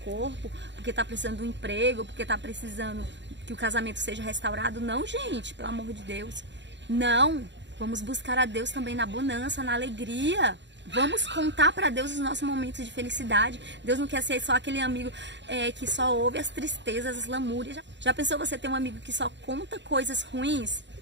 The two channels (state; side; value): late; left; 0.52 ms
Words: porque está precisando de um emprego, porque está precisando que o casamento seja restaurado. Não, gente, pelo amor de Deus. Não, vamos buscar a Deus também na bonança, na alegria. Vamos contar para Deus os nossos momentos de felicidade. Deus não quer ser só aquele amigo que só ouve as tristezas, as lamúrias. Já pensou você ter um amigo que só conta coisas ruins?